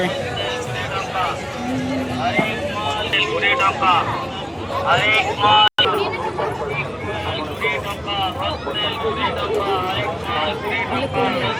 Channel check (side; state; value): both; identical; correlation 1.00